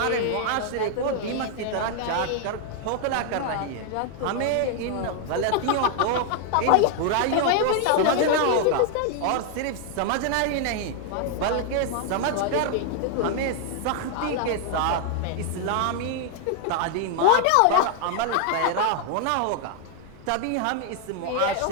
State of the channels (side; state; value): both; different; correlation 0.00